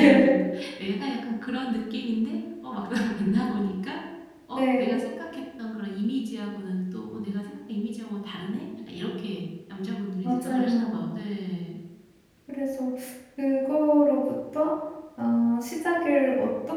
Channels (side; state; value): both; identical; correlation 1.00